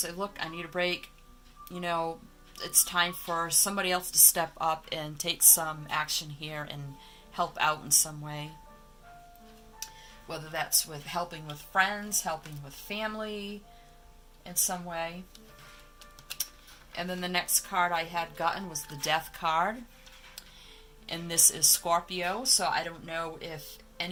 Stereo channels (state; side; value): identical; both; correlation 1.00